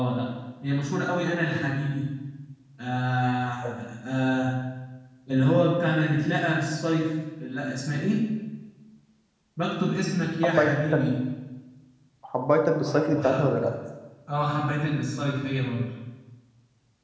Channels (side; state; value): both; identical; correlation 1.00